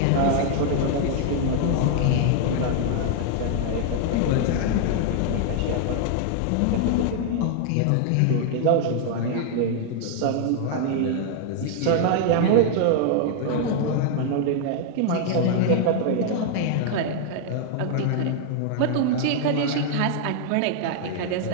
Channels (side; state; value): both; different; correlation 0.00